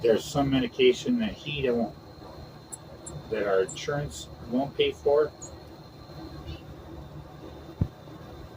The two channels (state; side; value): identical; both; correlation 1.00